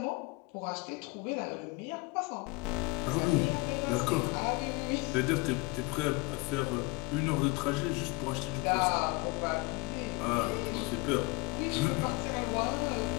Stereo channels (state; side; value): quieter; right; 24.1 dB